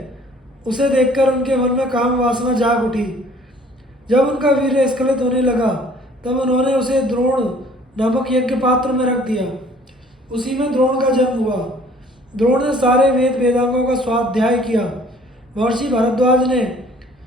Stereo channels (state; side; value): normal; both; correlation 0.55